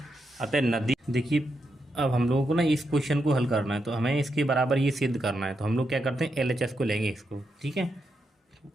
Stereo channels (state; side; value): normal; both; correlation 0.84